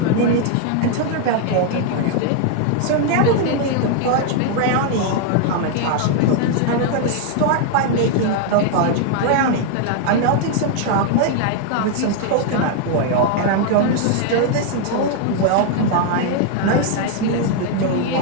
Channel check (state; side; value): different; both; correlation 0.00